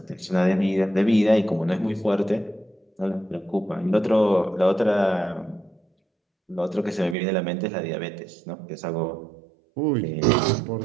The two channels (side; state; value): left; drops out; at 7.2 s